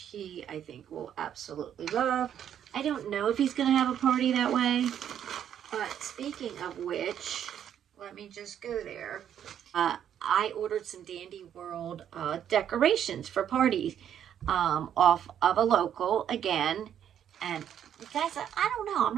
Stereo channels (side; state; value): left; quieter; 9.6 dB